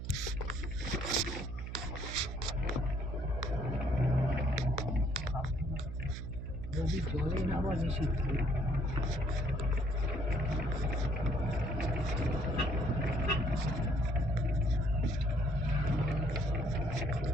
যদি জলে নামা নিষিদ্ধ।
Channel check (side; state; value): right; noise; hum, 7 dB below the sound